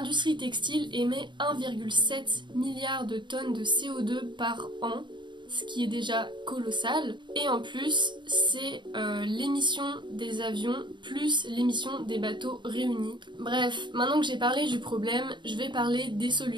textile émet 1,7 milliard de tonnes de CO2 par an, ce qui est déjà colossal, et en plus c'est l'émission des avions plus l'émission des bateaux réunis. Bref, maintenant que j'ai parlé du problème, je vais parler des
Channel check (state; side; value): late; left; 0.23 ms